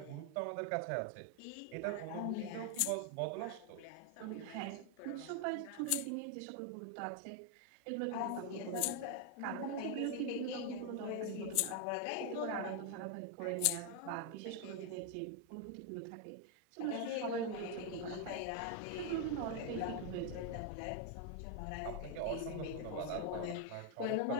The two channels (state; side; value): different; both; correlation 0.00